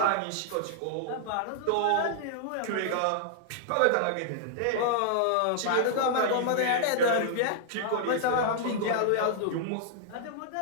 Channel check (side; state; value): both; different; correlation -0.01